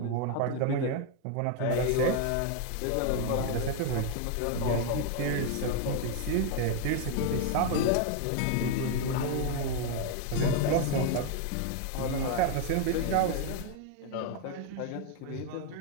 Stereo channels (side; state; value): both; different; correlation 0.00